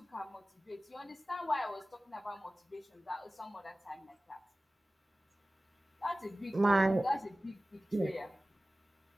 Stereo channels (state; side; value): normal; both; correlation 0.97